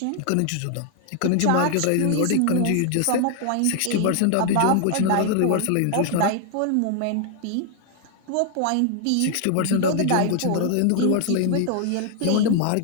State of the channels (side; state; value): both; different; correlation 0.00